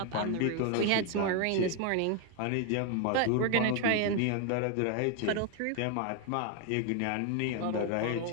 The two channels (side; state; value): both; different; correlation 0.01